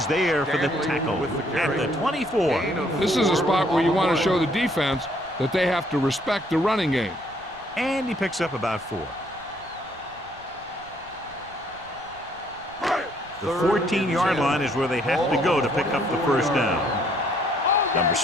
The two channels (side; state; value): right; noise; rumble, 24 dB below the sound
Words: there for the tackle at the 24. This is a spot where you want to show the defense that they have to respect the running game. And he picks up about 4. The 14-yard line is where they have to go to pick up the first down. Number